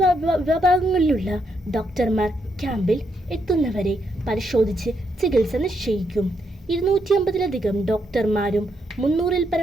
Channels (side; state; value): both; normal; correlation 0.78